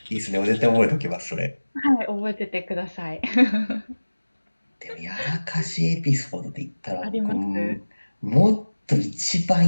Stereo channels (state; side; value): inverted; both; correlation -1.00